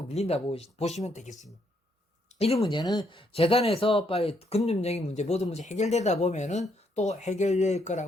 밀린다 보시면 되겠습니다. 이런 문제는 재단에서 빨리 금융적인 문제 모든 문제 해결되다 보면은 또 해결될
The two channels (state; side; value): normal; both; correlation 0.74